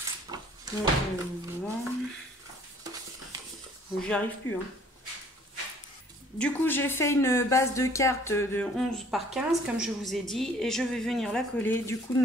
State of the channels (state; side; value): normal; both; correlation 0.56